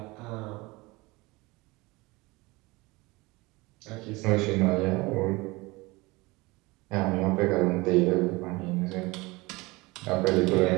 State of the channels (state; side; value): quieter; left; 23.1 dB